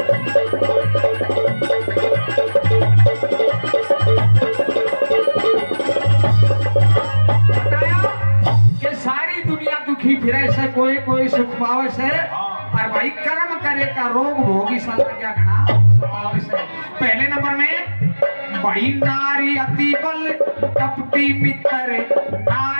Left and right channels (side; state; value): both; inverted; correlation -1.00